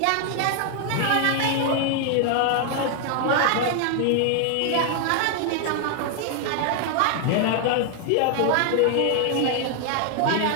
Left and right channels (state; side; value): different; both; correlation 0.00